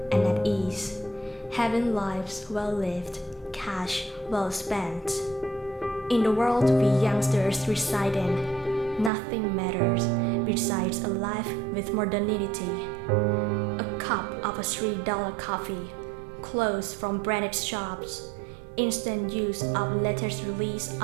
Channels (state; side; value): drops out; left; at 9.1 s